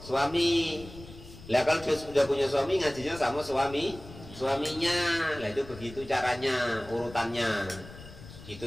suami, lah kalau dia sudah punya suami ngajinya sama suaminya. Lah itu begitu caranya, urutannya,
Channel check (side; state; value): left; noise; rumble, 16 dB below the sound